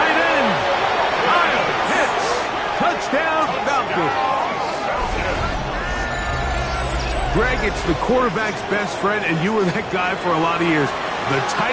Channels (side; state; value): both; identical; correlation 1.00